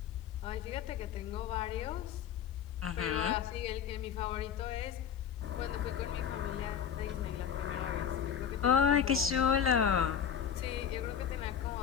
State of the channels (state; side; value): quieter; right; 8.5 dB